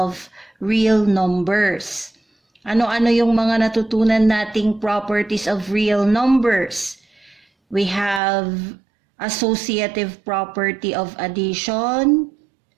real numbers. Ano-ano yung mga natutunan nating properties of real numbers? We have associative property of addition,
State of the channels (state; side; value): drops out; left; at 8.2 s